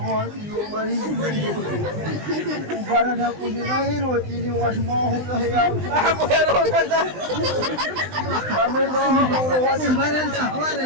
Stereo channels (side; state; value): left; late; 20 ms